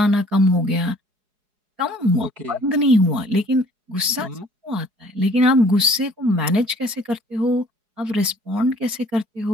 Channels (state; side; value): late; left; 4.8 ms